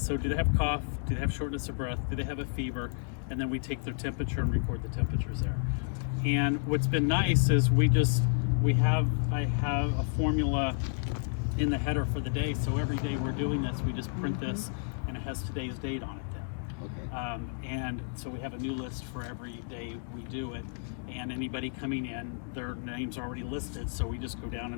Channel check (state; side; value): silent; right; 57 dB below the other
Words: do they have cough? Do they have shortness of breath? Do they have a fever? And then we take their temperature and record the temperatures there. And what's been nice is I have a formula in the header for the day. So every day we're doing this, we just print this, and it has today's date on it then. Okay. And so we have a new list for every day we do it, and anybody coming in, their names are already listed, so we just go down